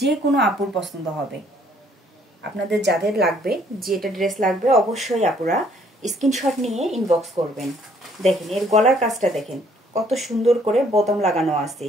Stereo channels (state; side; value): normal; both; correlation 0.63